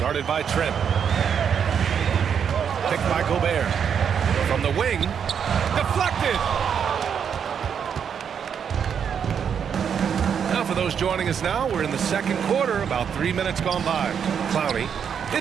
guarded by Trent. Picked by Gobert. From the wing, deflected. Now for those joining us now, we're in the second quarter, about 3 minutes gone by. Clowney,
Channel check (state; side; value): quieter; left; 7.6 dB